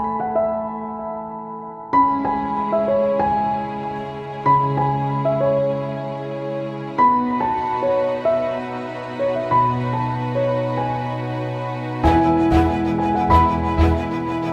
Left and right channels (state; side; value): identical; both; correlation 1.00